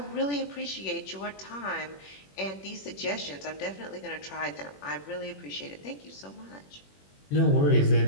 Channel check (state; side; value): late; right; 21 ms